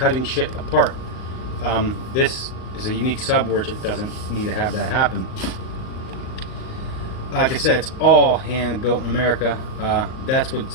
shit apart. This is a unique sub where it doesn't need to have that happen. Like I said, it's all hand built in America. That's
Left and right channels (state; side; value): late; right; 38 ms